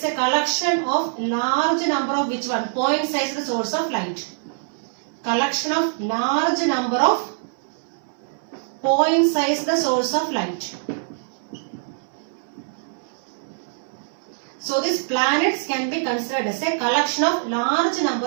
a collection of large number of which one? Point sized source of light. Collection of large number of point sized source of light. So these planets can be considered as a collection of large number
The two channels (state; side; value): silent; left; digital silence